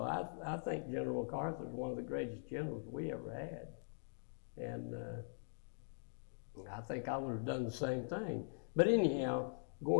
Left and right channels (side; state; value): right; silent; digital silence